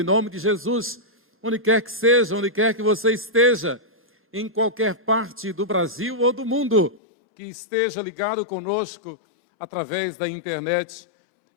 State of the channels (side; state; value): right; drops out; at 7.0 s